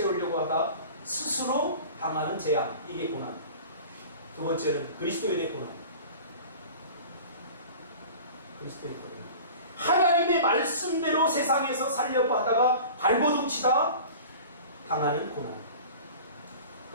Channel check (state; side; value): inverted; both; correlation -0.39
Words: 하다 스스로 당하는 재앙, 이게 고난. 두 번째는 그리스도인의 고난. 그리스도의 고난. 하나님의 말씀대로 세상에서 살려고 하다가 발버둥 치다 당하는 고난.